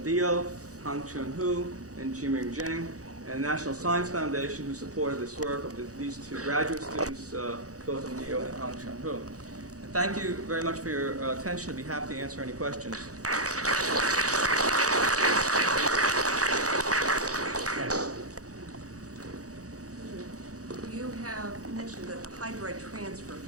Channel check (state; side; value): late; left; 0.66 ms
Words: Dio, Hang Chun Hu, and Jiming Zheng, and the National Science Foundation, who supported this work of these two graduate students, Gautam Dio and Hang Chun Hu. And thank you very much for your attention. I'd be happy to answer any questions. You have mentioned that the hydride transfer